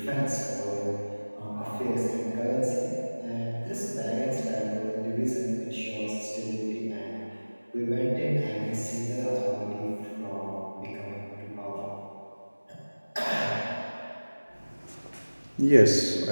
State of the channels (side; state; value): both; inverted; correlation -1.00